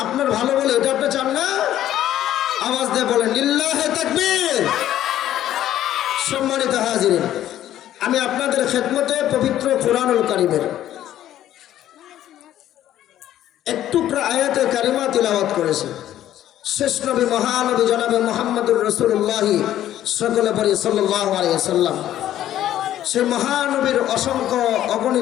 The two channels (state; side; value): quieter; right; 12.3 dB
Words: আপনার ভালো বলে এটা আপনি চান না? আওয়াজ দিয়ে বলেন লিল্লাহে তাকবীর। সম্মানিত হাজিরিন, আমি আপনাদের খেদমতে পবিত্র কুরআনুল কারীমের একটু আয়াতে কারিমা তিলাওয়াত করেছি। শেষ নবী মহানবী জনাবে মুহাম্মদুর রাসূলুল্লাহ সকলে পড়ি সাল্লাল্লাহু আলাইহি ওয়াসাল্লাম। সেই মহানবীর অসংখ্য